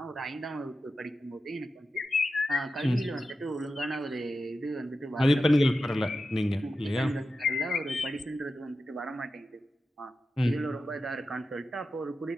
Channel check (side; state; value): both; normal; correlation 0.91